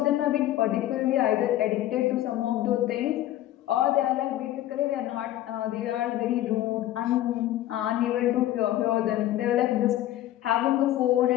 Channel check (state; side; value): quieter; right; 13.8 dB